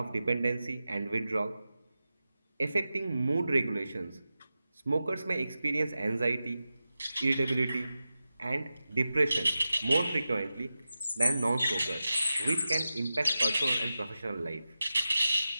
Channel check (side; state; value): both; inverted; correlation -0.92